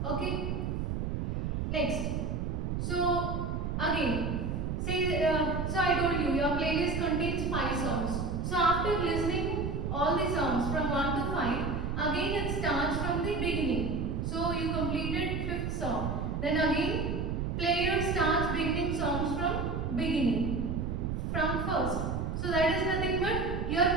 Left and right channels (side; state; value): right; noise; rumble, 1 dB below the sound